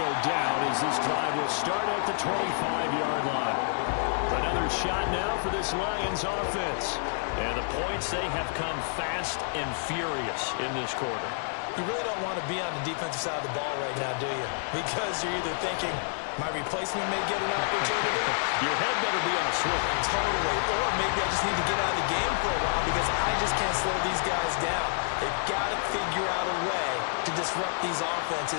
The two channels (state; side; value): silent; right; digital silence